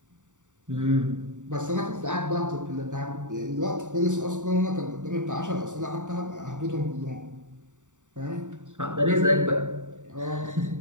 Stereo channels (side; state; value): left; late; 0.86 ms